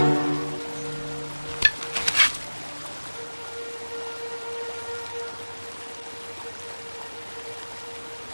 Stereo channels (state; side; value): inverted; both; correlation -1.00